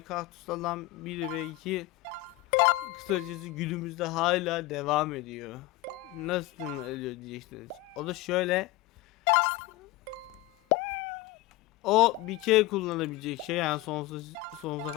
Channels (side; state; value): right; quieter; 17.0 dB